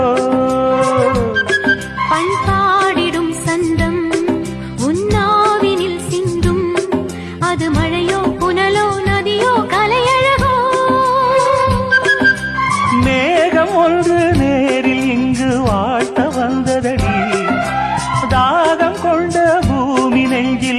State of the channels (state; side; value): identical; both; correlation 1.00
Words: பண்பாடிடும் சந்தம் உன்னாவினில் சிந்தும் அது மழையோ புனலோ நதியோ கலையழகோ மேகம் ஒன்று நேரில் இங்கு வாழ்த்த வந்ததடி தாகம் கொண்ட பூமி